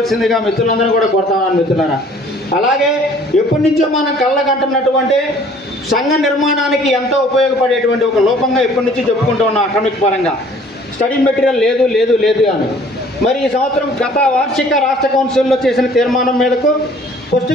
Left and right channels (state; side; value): normal; both; correlation 0.55